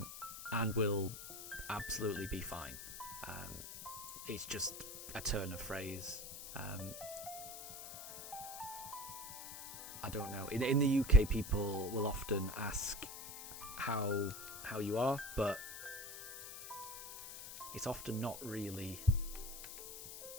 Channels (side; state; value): left; noise; hiss, 10 dB below the sound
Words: will absolutely be fine. It's just a turn of phrase. I don't know. In the UK, people will often ask how you are, but it's often not really.